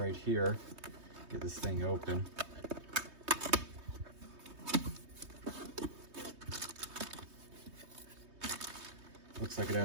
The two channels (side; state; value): left; late; 3.2 ms